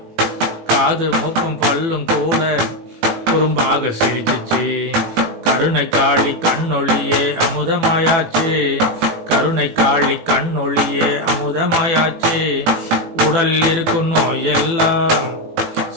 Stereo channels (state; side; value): late; left; 18 ms